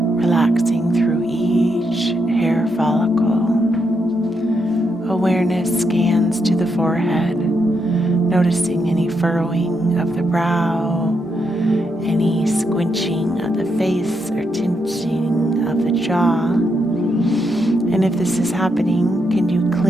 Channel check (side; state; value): both; normal; correlation 0.81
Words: relaxing through each hair follicle? Awareness scans to the forehead, noticing any furrowing of the brow, any squinching of the face or tinching of the jaw. And if this is happening, can you